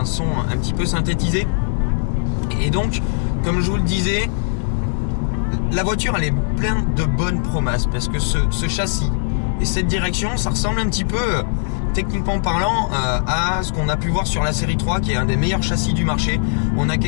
son un petit peu synthétisé. Et donc, comme je vous le disais, la voiture elle est pleine de bonnes promesses parce que ce châssis et cette direction ça ressemble un petit peu techniquement parlant à ce qu'on a pu voir sur la série 3 qui est un des meilleurs châssis du marché. On a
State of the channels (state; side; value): silent; right; 66 dB below the other